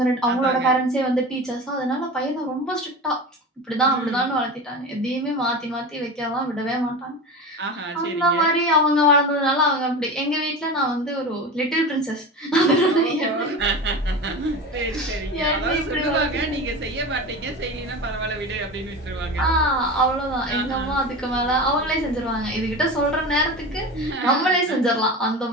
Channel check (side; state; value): both; normal; correlation 0.28